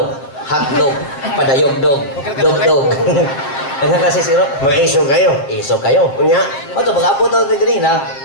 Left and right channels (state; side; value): late; right; 7.3 ms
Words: Hot Dog, Padayog Dog, Dog Dog. Nagkakasi siro. Mga iso kayo. Iso kayo. Unya. O to, pag-abot ako ganina,